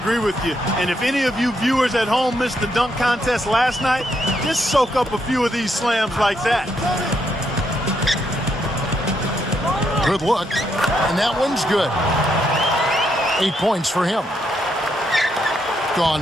with you. And if any of you viewers at home missed the dunk contest last night, just soak up a few of these slams like that. Good look. And that one's good. 8 points for him.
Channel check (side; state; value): both; normal; correlation 0.77